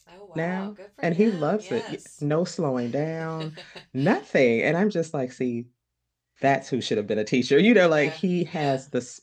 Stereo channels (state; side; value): identical; both; correlation 1.00